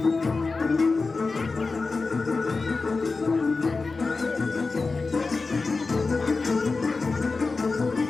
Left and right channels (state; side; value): quieter; right; 4.0 dB